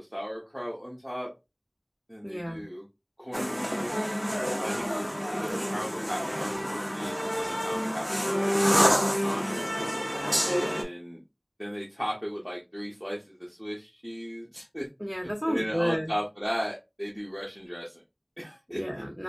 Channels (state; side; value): identical; both; correlation 1.00